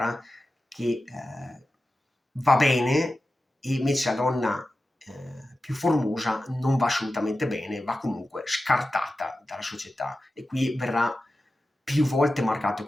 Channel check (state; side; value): normal; both; correlation 0.93